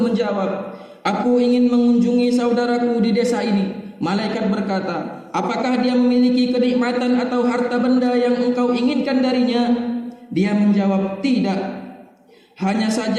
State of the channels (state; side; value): identical; both; correlation 1.00